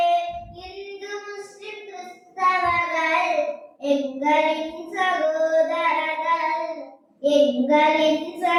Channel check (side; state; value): both; identical; correlation 1.00